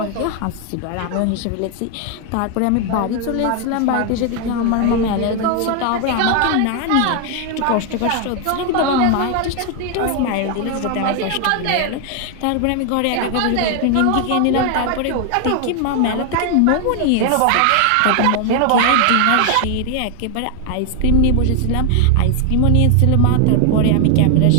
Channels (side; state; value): both; different; correlation 0.00